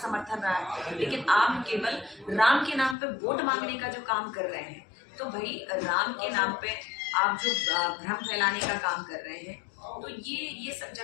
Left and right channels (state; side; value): drops out; right; at 3.0 s